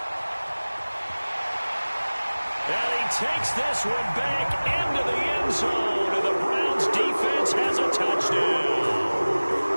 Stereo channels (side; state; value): both; inverted; correlation -1.00